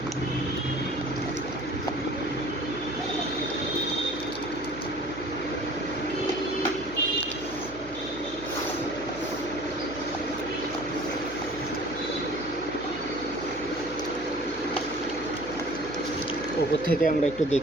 ওপর থেকে আমরা একটু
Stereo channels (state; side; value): noise; left; hum, 16 dB below the sound